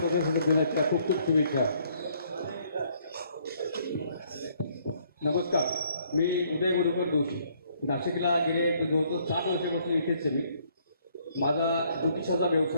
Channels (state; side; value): inverted; both; correlation -0.66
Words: दिनाच्या खूप खूप शुभेच्छा. नमस्कार, मी उदय गुरुकर जोशी. नाशिकला गेले जवळजवळ 7 वर्षापासून इथेच आहे मी. माझा ज्योतिषाचा